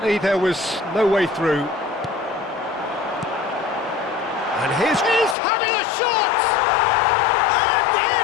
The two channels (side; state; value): right; drops out; at 5.4 s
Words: there was no way through. And he's having a shot! And